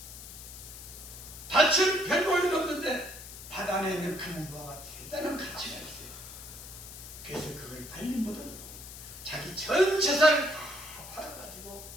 밭은 100모이 넘는데 밭 안에 있는 검은 무화가 대단한 가치가 있어요. 그래서 그걸 발린 못하고 자기 전 재산을 다 팔아가지고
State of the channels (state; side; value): noise; left; hiss, 13 dB below the sound